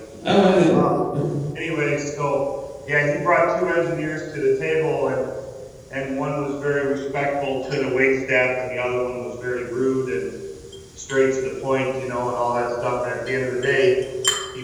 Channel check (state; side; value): identical; both; correlation 1.00